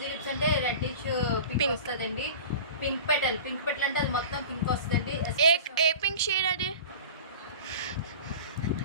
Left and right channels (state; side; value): inverted; both; correlation -0.36